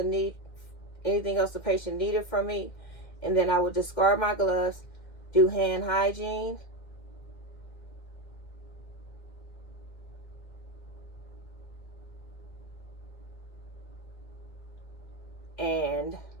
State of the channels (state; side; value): late; right; 2.1 ms